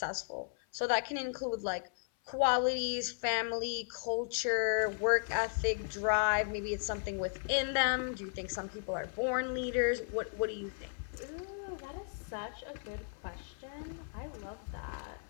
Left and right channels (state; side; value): silent; right; 54 dB below the other